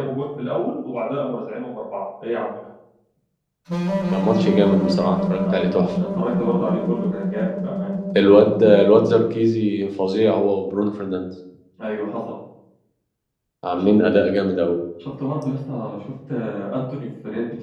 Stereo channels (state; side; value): identical; both; correlation 1.00